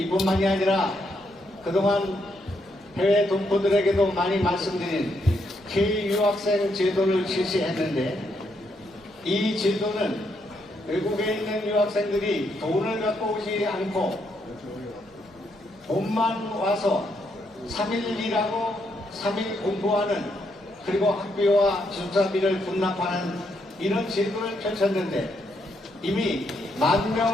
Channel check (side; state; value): both; normal; correlation 0.77